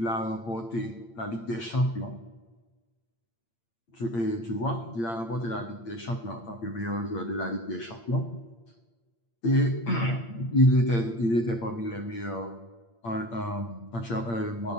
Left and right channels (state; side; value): late; right; 8.7 ms